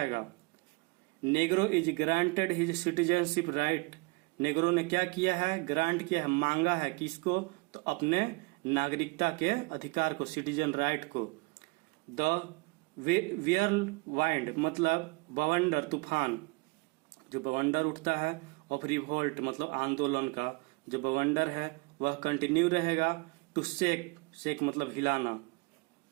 Negro is granted his citizenship right, Negro ने क्या किया है? ग्रांट किया है, मांगा है। किसको? तो अपने नागरिकता के अधिकार को, सिटीजन राइट को। द वाइंड मतलब बवंडर, तूफान, जो बवंडर उठता है ऑफ रिवोल्ट मतलब आंदोलन का जो बवंडर है वह कंटिन्यू रहेगा। टू शेक मतलब हिलाना।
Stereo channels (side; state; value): left; quieter; 28.0 dB